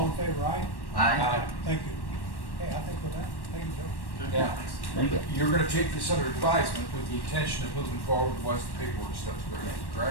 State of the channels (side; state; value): right; late; 1.1 ms